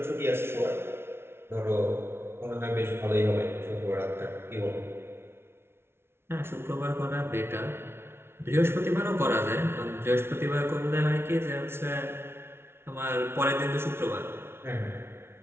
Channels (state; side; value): late; left; 0.12 ms